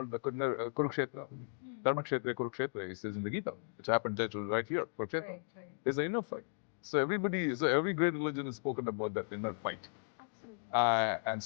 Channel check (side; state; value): right; silent; digital silence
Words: the Kurukshetra, Dharmakshetra, Kurukshetra, he says in the Gita, which happened right here, Kurukshetra. Right. Is the inner fight. So every great religion is spoken about that inner fight. Absolutely. And